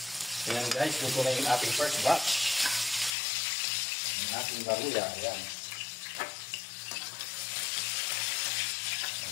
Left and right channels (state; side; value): drops out; right; at 3.2 s